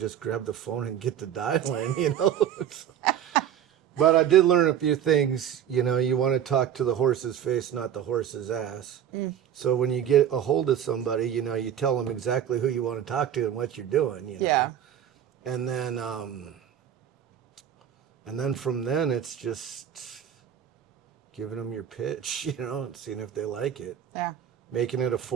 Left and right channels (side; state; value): left; quieter; 9.7 dB